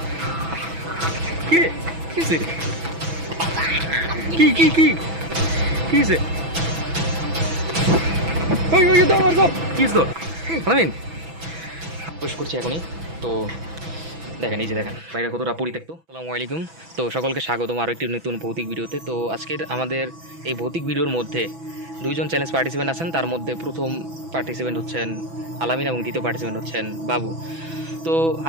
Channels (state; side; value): late; left; 6.1 ms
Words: কি রে? কি হয়েছে? কি কি কি কি হয়েছে? ওই ওই ধর ধর। কি হয়েছে তোর? আলামিন প্রবেশ করছি এখনই। তো দেখেন, এই যে দেখেন বাইরে কতটা পরিত্যক্ত। আসসালামু আলাইকুম। তো সকলকে স্বাগতম আরও একটি নতুন ভৌতিক ভিডিওতে। তো আজকের আমাদের এই ভৌতিক ভিডিওর মধ্যে দুইজন চ্যালেঞ্জ পার্টিসিপেন্ট আছেন। তার মধ্যে প্রথম পার্টিসিপেন্ট হচ্ছেন আলামিন এবং দ্বিতীয় পার্টিসিপেন্ট হচ্ছেন বাবু। তো